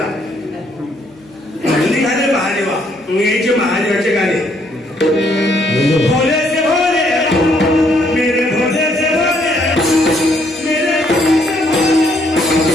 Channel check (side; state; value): right; noise; hum, 28 dB below the sound